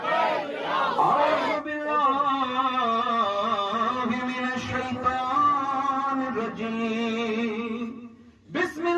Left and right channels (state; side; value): identical; both; correlation 1.00